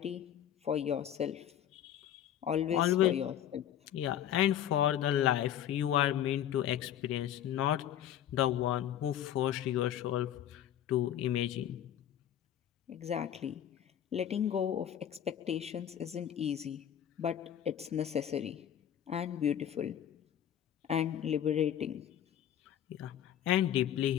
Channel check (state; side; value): quieter; right; 10.5 dB